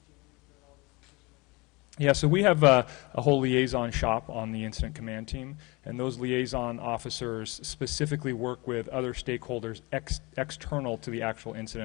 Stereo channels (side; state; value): right; quieter; 25.2 dB